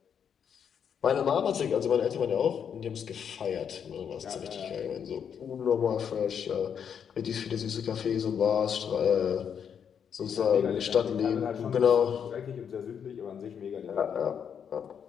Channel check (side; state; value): right; quieter; 7.7 dB